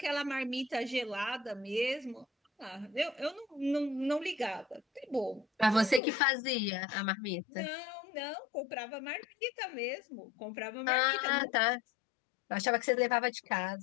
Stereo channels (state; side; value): drops out; right; at 6.0 s